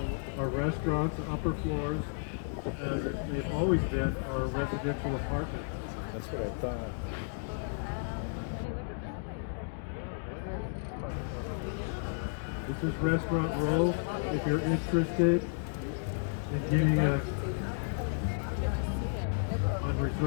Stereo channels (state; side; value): silent; right; digital silence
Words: are restaurants. The upper floors, as they've always been, are residential apartments. That's what I thought. This is Restaurant Row. If you're interested in getting on